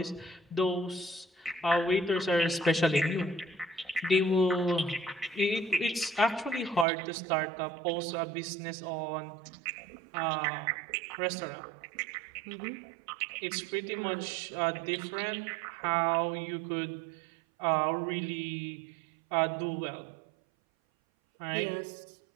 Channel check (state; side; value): drops out; left; at 6.9 s